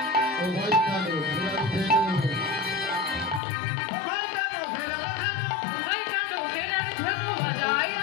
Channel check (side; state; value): right; drops out; at 3.4 s